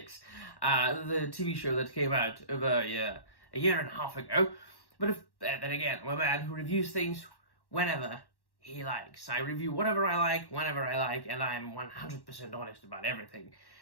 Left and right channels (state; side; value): late; right; 1.1 ms